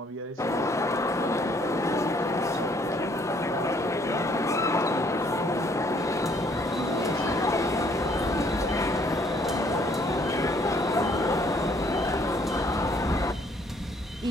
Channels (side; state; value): both; normal; correlation 0.63